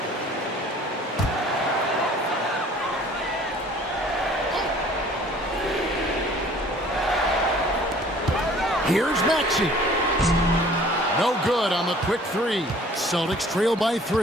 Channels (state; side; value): normal; both; correlation 0.52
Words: Here's Maxey. No good on the quick 3. Celtics trail by